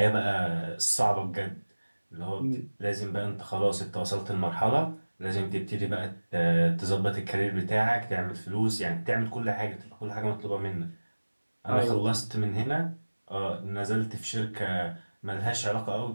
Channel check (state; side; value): inverted; both; correlation -1.00